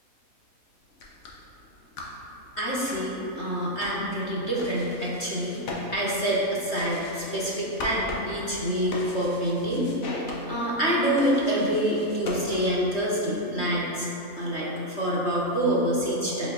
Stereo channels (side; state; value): right; late; 3.2 ms